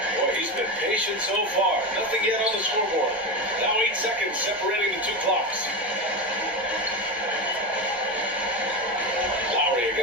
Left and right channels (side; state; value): both; normal; correlation 0.18